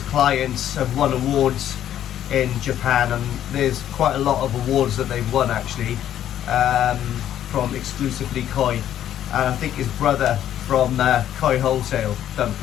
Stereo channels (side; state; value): right; quieter; 11.1 dB